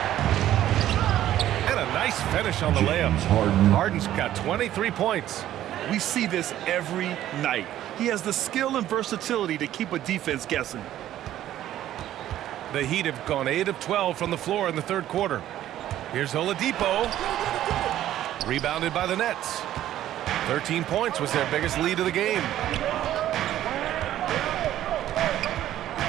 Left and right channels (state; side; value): quieter; left; 12.7 dB